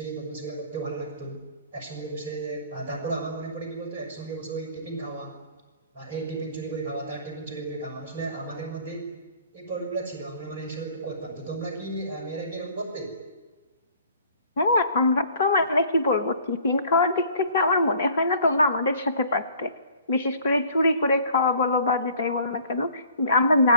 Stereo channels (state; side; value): inverted; both; correlation -0.53